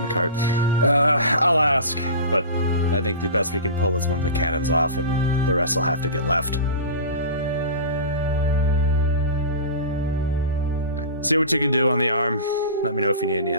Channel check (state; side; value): inverted; both; correlation -0.33